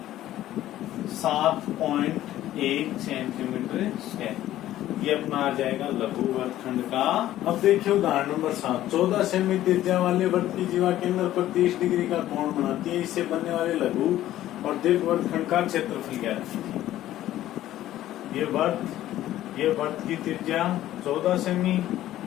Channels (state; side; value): quieter; right; 13.6 dB